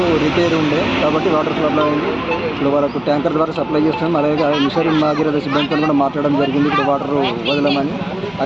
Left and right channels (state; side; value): noise; left; hum, 30 dB below the sound